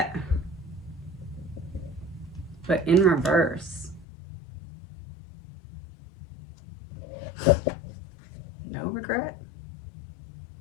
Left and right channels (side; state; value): right; drops out; at 4.0 s